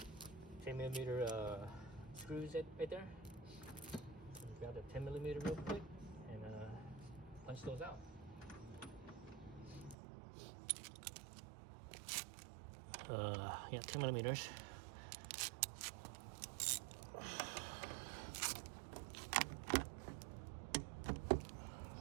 screws right there. So grab the 10 millimeter real quick and punch those out. Yeah, 10 millimeters.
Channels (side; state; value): left; drops out; at 10.0 s